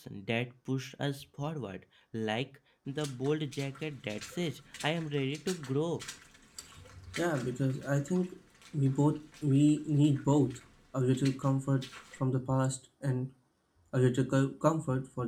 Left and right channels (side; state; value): both; identical; correlation 1.00